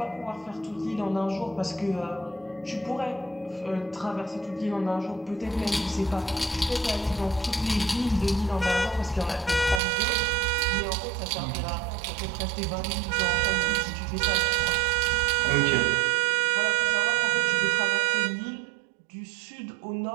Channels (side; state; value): left; drops out; at 9.8 s